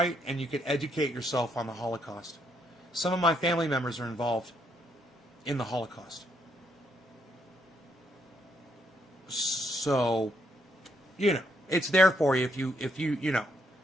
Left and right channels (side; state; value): both; normal; correlation 0.74